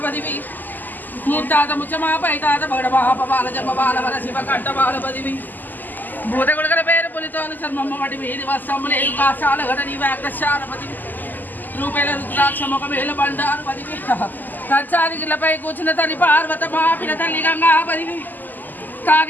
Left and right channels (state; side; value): late; right; 0.086 ms